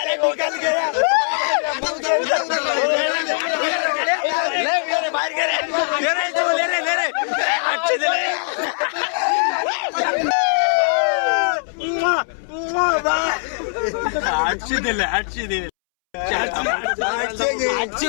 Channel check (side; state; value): right; silent; 65 dB below the other